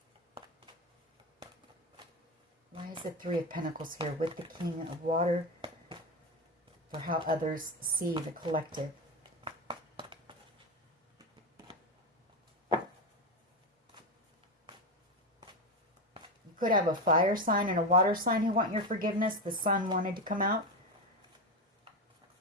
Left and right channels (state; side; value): normal; both; correlation 0.15